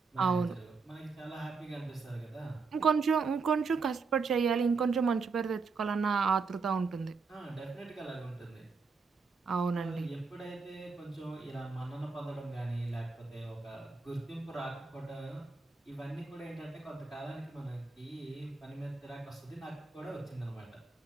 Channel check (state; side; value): quieter; left; 4.7 dB